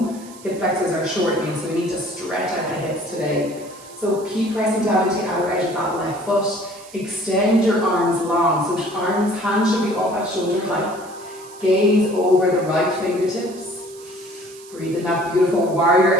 hip flexors are shortening, so we need to stretch out the hips today. So keep pressing down into the outer edge of that left foot. Extend your arms long. So hands should be up at shoulder height. Gaze over the right fingertips. Breathe in that beautiful warrior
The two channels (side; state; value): right; noise; hiss, 20 dB below the sound